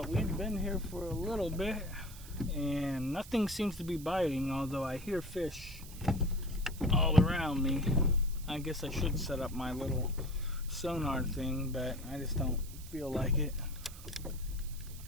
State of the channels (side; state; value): right; noise; hiss, 17 dB below the sound